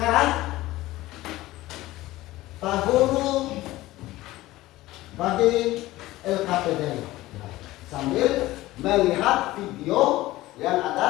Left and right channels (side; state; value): right; quieter; 17.4 dB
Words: Pak Guru bagi LKPD sambil melihat video yang